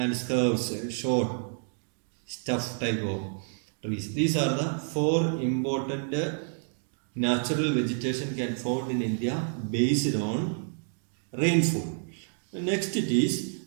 scrubs, short, stuff type of trees. These are the 4 important natural vegetation can found in India based on rainfall. Next it is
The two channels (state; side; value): silent; left; 59 dB below the other